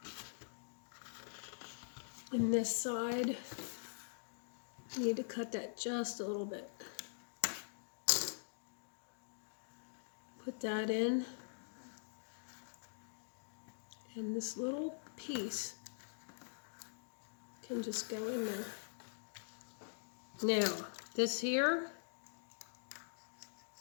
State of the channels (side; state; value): right; silent; digital silence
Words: And this side, I need to cut that just a little bit. Put that in. And this little piece can just go in there. Now, this here,